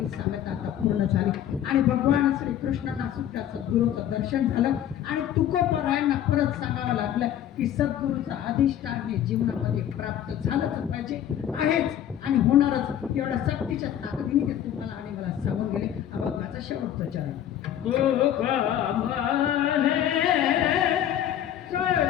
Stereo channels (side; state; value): right; quieter; 10.8 dB